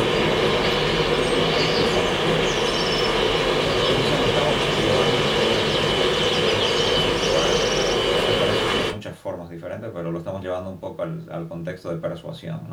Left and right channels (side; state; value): both; identical; correlation 1.00